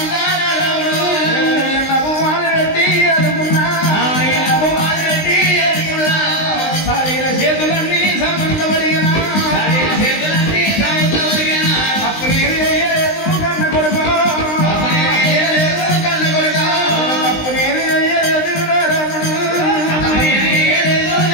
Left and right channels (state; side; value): late; right; 19 ms